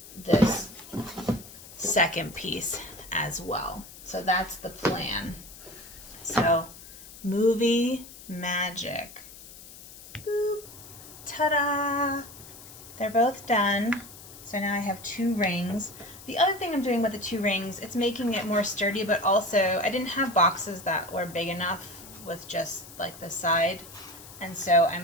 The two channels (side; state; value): left; noise; hiss, 17 dB below the sound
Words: this second piece as well. So that's the plan. So movie magic. Boop. Ta-da! They're both done. So now I have 2 rings. The other thing I'm doing with the 2 rings, it's making it more sturdy, but also I didn't have boxes that were big enough with just like the side. And so